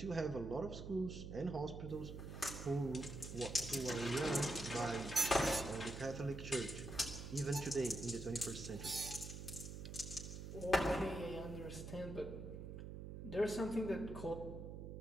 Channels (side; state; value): right; noise; hum, 8 dB below the sound